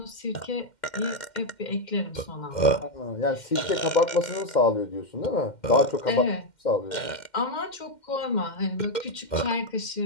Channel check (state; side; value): late; right; 2.1 ms